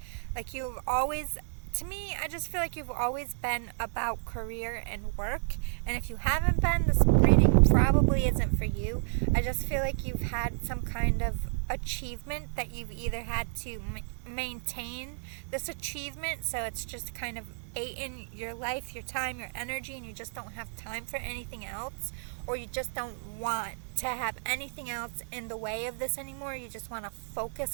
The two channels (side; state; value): left; silent; digital silence